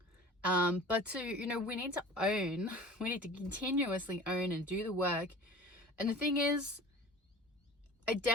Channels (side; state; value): both; normal; correlation 0.41